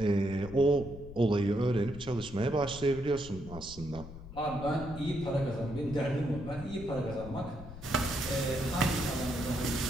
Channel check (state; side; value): noise; left; rumble, 13 dB below the sound